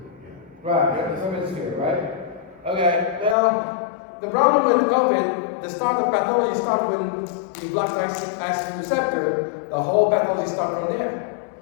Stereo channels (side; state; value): right; drops out; at 3.4 s